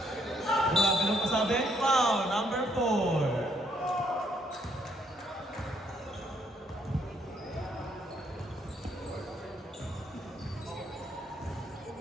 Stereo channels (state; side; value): normal; both; correlation 0.70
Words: Grabe nung pasabi. Foul, number 4.